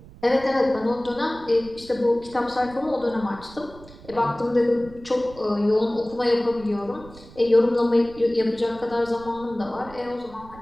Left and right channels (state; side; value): noise; right; rumble, 19 dB below the sound